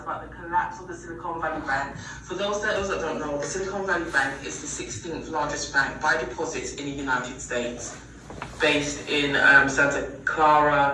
the collapse of the Silicon Valley Bank. For those that don't know, the Silicon Valley Bank is the 16th largest bank by deposits in the United States, based in Santa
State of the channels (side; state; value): both; identical; correlation 1.00